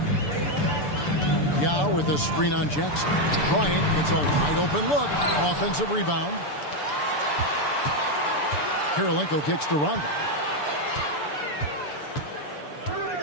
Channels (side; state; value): right; late; 6.9 ms